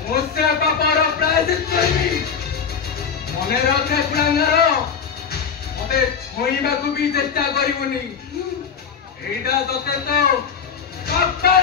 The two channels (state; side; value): quieter; right; 6.6 dB